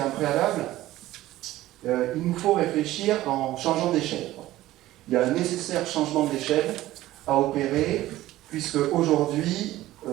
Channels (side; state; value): left; quieter; 15.6 dB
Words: un préalable, il nous faut réfléchir en changeant d'échelle. Il y a un nécessaire changement d'échelle à opérer, puisque aujourd'hui,